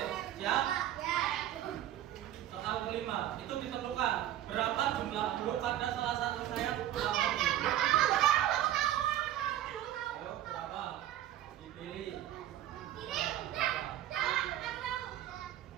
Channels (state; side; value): quieter; left; 12.4 dB